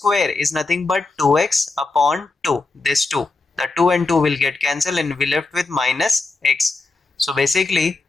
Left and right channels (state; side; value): quieter; right; 3.6 dB